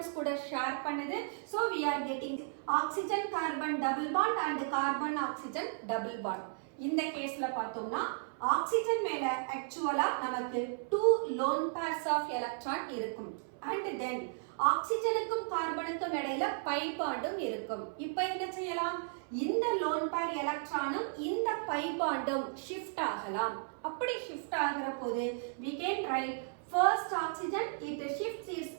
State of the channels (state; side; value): silent; left; 55 dB below the other